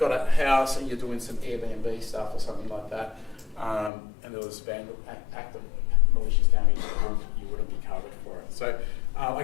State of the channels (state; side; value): drops out; right; at 3.9 s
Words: a house and you're doing some Airbnb stuff or something like that, and there was active malicious damage, you wouldn't be covered for it. So I